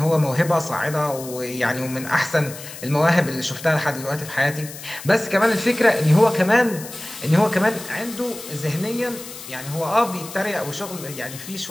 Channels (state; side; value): noise; left; hiss, 13 dB below the sound